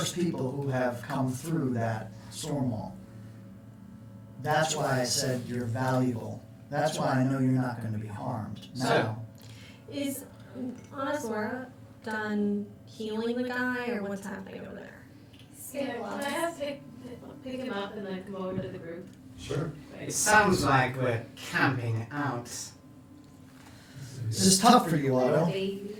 people who have come through that storm wall. That's why I said you're valuable. That's why I know you're not going to be harmed. Now, Is Anazora done healing the guy, or what's happening over there? Can I have to pick him up and then come over to the group? Sure. It sounds like we're camping out. This is tough for you, Otto.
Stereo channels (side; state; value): both; identical; correlation 1.00